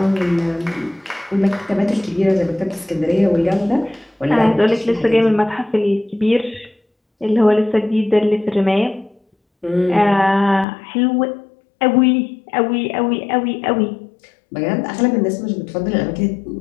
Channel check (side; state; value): right; drops out; at 10.7 s